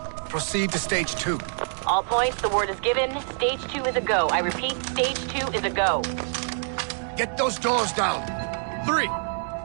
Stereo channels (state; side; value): silent; left; digital silence